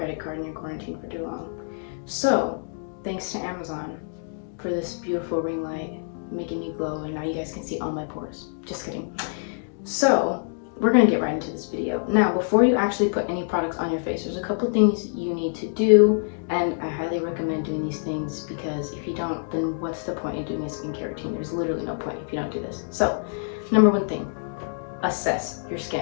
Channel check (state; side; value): silent; right; digital silence